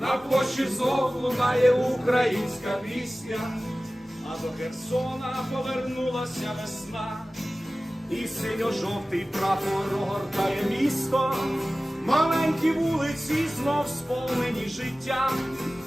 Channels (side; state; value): both; normal; correlation 0.97